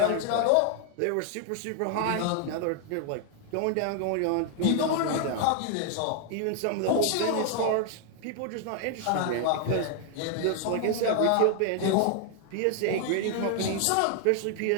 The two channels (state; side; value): different; both; correlation 0.00